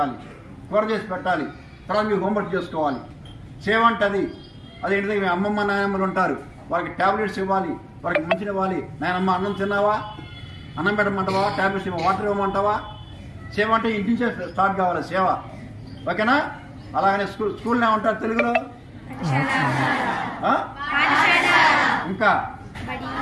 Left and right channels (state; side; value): identical; both; correlation 1.00